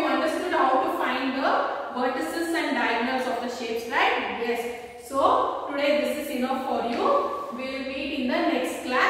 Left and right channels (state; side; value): identical; both; correlation 1.00